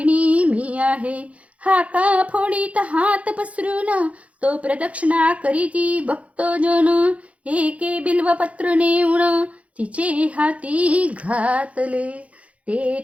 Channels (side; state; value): left; late; 0.065 ms